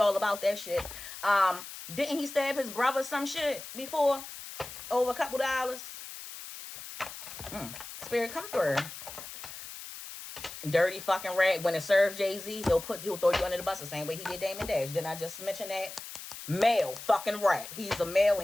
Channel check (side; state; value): left; noise; hiss, 12 dB below the sound